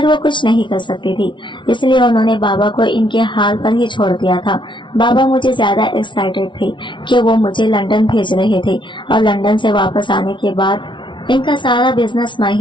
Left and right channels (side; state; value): right; late; 0.24 ms